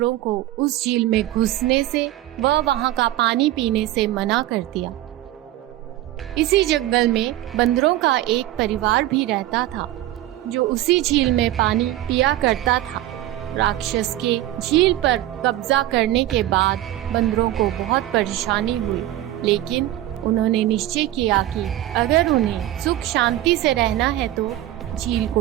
को उस झील में घुसने से व वहां का पानी पीने से मना कर दिया। इसी जंगल में बंदरों का एक परिवार भी रहता था, जो उसी झील में पानी पिया करता था। राक्षस के झील पर कब्जा करने के बाद बंदरों को बहुत परेशानी हुई, लेकिन उन्होंने निश्चय किया कि अगर उन्हें सुख शांति से रहना है तो झील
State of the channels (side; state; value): left; quieter; 14.5 dB